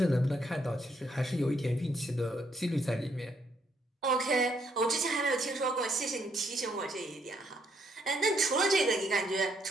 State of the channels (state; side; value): normal; both; correlation 0.73